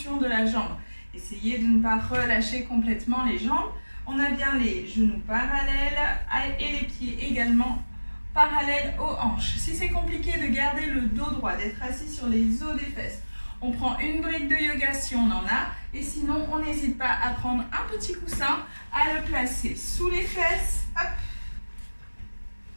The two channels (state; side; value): inverted; both; correlation -1.00